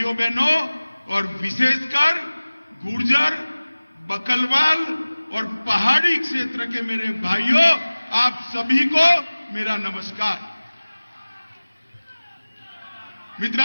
बहनों, और विशेषकर गुर्जर, बकलवाल और पहाड़ी क्षेत्र के मेरे भाइयों, आप सभी को मेरा नमस्कार।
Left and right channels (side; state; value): both; inverted; correlation -1.00